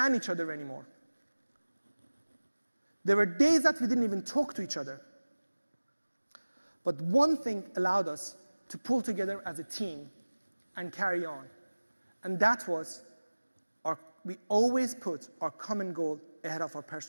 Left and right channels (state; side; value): inverted; both; correlation -1.00